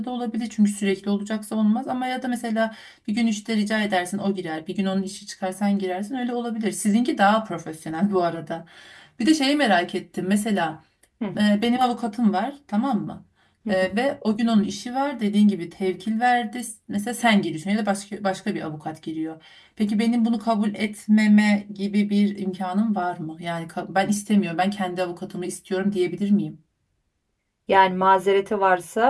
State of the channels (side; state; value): both; identical; correlation 1.00